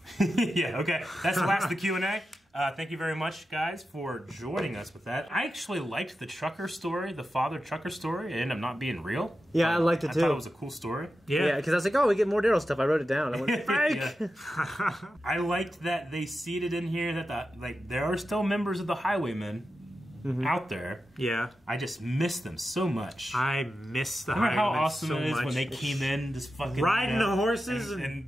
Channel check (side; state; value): both; normal; correlation 0.91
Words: Yeah, okay. That's the last of the Q&A. Thank you very much, guys, for joining us with that. I actually liked the trucker story, the father trucker story. It ended up not being real. Yeah, I liked it too. I thought it was a cool story. Yeah, because I was like, oh, we get more Daryl stuff. I wrote it down. I went, fake! I liked that they seeded in here that there are still members of the Highwaymen out there. Yeah. I just miss them so much. I miss the Highwaymen. Remember how awesome so it is much. when they came in, just fucking riding the horses,